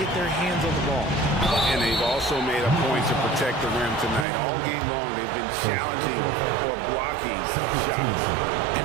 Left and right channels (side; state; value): left; drops out; at 4.2 s